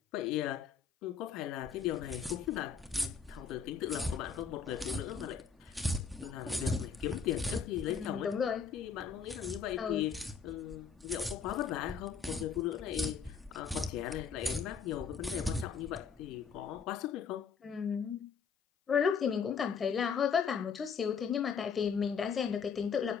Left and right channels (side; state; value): right; quieter; 6.4 dB